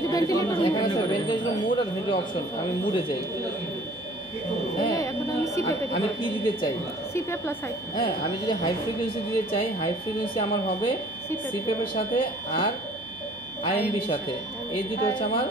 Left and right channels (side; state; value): both; normal; correlation 0.53